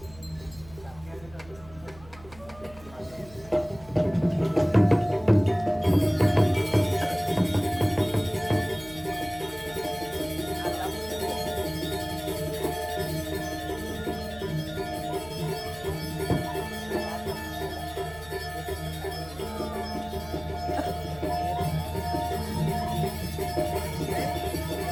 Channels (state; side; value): noise; right; hum, 20 dB below the sound